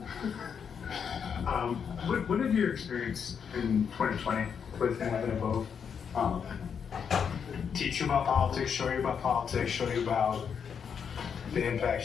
What did your experience in 2020 with having a vote teach you about politics, show you about politics, show you about the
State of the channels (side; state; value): right; quieter; 7.0 dB